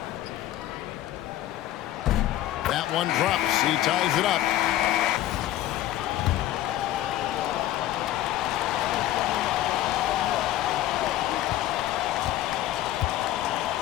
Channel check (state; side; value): quieter; right; 13.8 dB